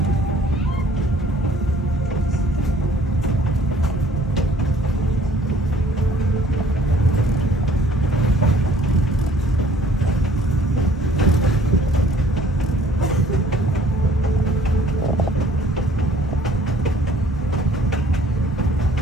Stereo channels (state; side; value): normal; both; correlation 0.56